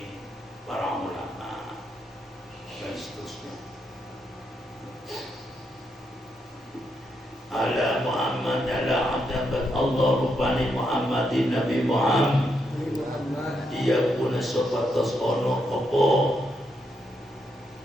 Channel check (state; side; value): normal; both; correlation 0.80